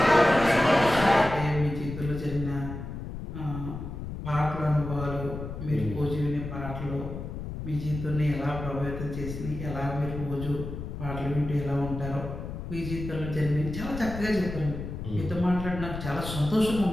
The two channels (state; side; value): noise; left; rumble, 8 dB below the sound